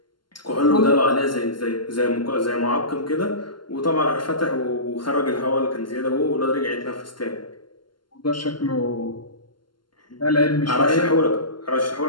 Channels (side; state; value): right; late; 0.72 ms